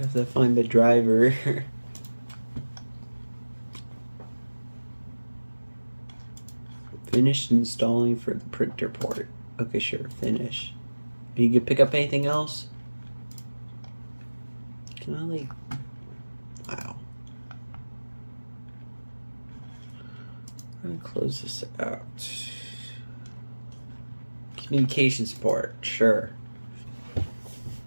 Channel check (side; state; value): both; inverted; correlation -1.00